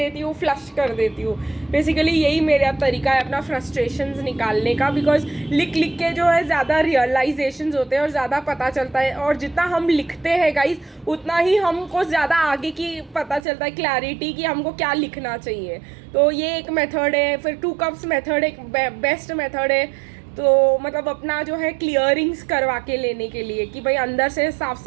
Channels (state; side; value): drops out; left; at 13.4 s